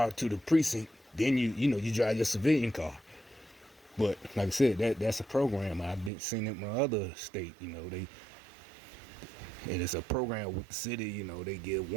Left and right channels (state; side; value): drops out; left; at 6.1 s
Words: to the precinct, then you drive your civilian car. But like I said, that's a program I've been seeing in my other state. And it's a program with the city. They give